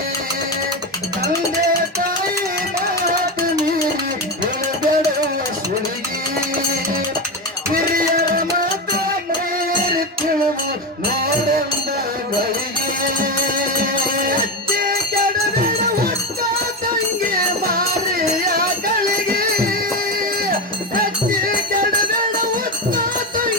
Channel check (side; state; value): both; normal; correlation 0.16